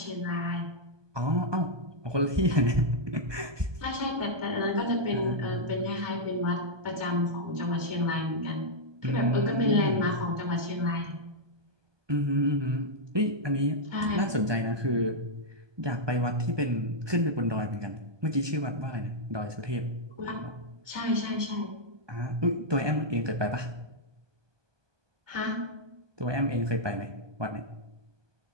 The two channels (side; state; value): left; late; 1.2 ms